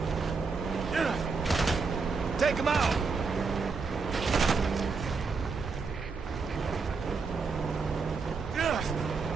Take him out!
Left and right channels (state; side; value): quieter; left; 4.7 dB